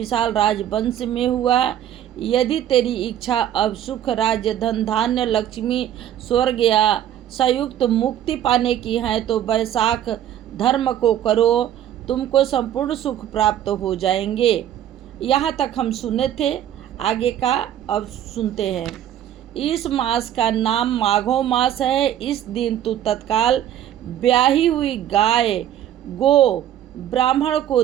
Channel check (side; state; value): left; quieter; 11.1 dB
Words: राजवंश में हुआ। यदि तेरी इच्छा अब सुख, राज्य, धन, धान्य, लक्ष्मी, स्वर्ग या संयुक्त मुक्ति पाने की है तो वैशाख धर्म को करो, तुमको संपूर्ण सुख प्राप्त हो जाएंगे। यहाँ तक हम सुने थे। आगे का अब सुनते हैं। इस मास का नाम माघो मास है। इस दिन तू तत्काल ब्याही हुई गाय गो ब्राह्मण को